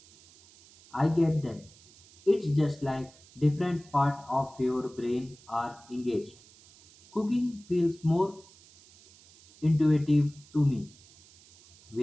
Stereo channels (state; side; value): noise; right; hiss, 25 dB below the sound